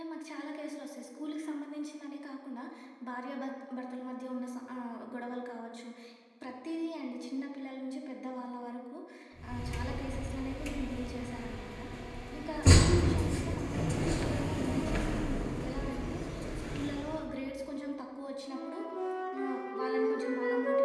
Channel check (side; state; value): both; identical; correlation 1.00